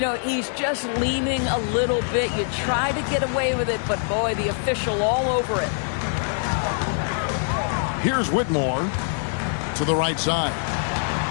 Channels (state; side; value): silent; right; 59 dB below the other